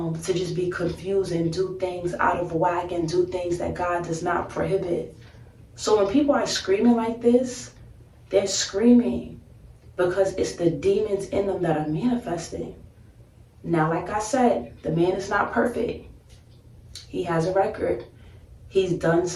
just be confused and do things out of whack and do things that God does not prohibit. So when people are screaming like this, they're screaming because it's the demons in them that are manifesting. Now, like I said, the man is not perfect. He has a record. He's done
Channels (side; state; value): both; identical; correlation 1.00